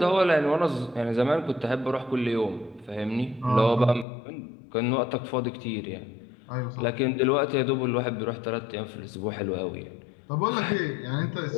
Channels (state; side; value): drops out; right; at 4.0 s